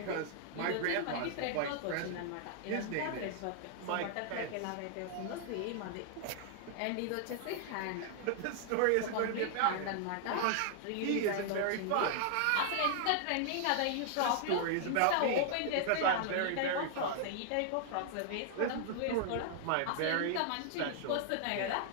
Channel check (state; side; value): different; both; correlation -0.01